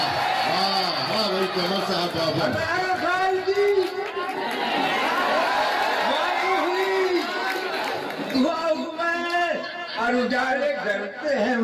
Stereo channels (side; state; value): both; identical; correlation 1.00